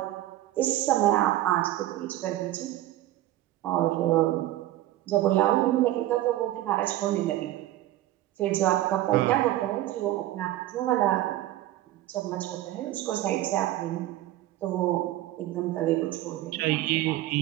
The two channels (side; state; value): left; quieter; 14.7 dB